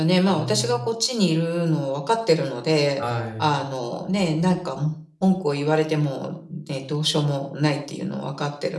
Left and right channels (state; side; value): identical; both; correlation 1.00